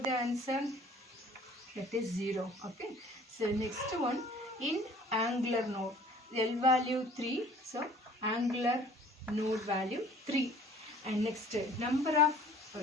the answer? That is 0. Okay. So next one, in angular node, L value 3. So angular node value 3. And next number of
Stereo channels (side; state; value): both; normal; correlation 0.51